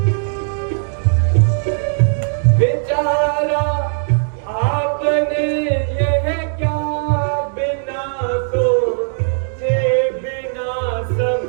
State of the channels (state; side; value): silent; left; 67 dB below the other